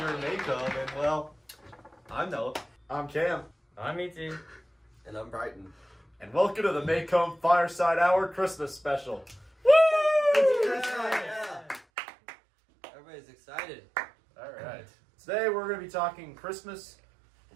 in Maycomb, and well, I'm Noah. I'm Cam. I'm ET. And I'm Brighton. And welcome to the Maycomb Fireside Hour Christmas Special. Yeah. Everybody's excited. Alright. Today we're going to be talking Christmas,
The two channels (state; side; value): drops out; left; at 11.8 s